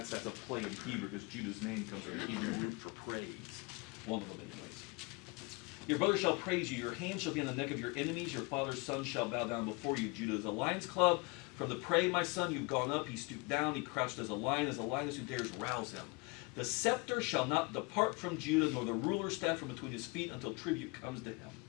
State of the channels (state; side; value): quieter; right; 27.6 dB